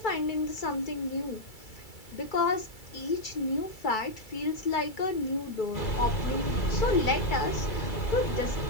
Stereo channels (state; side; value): late; right; 2.3 ms